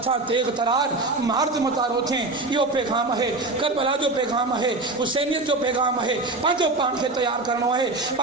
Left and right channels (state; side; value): quieter; left; 3.1 dB